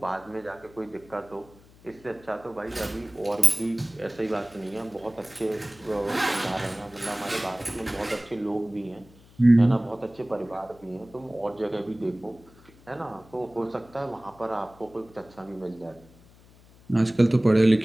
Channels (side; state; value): left; noise; hum, 25 dB below the sound